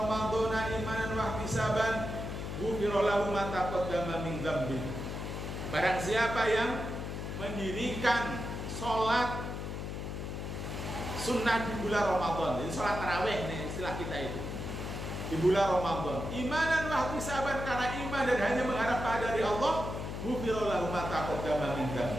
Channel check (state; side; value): noise; left; hum, 5 dB below the sound